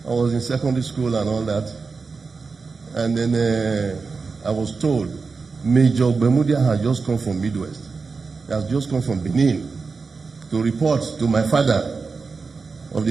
I was in secondary school and all that. And then I was told Major Ogbemudia had just come from Midwest. He has just come from Benin to report to my father of the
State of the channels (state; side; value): quieter; left; 4.6 dB